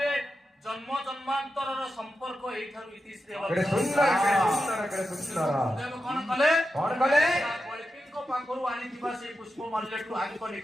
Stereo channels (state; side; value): normal; both; correlation 0.89